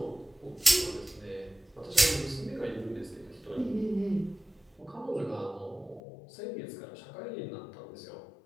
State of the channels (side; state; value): right; drops out; at 6.0 s